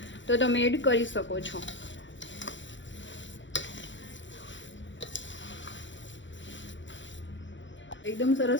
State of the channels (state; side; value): late; right; 0.54 ms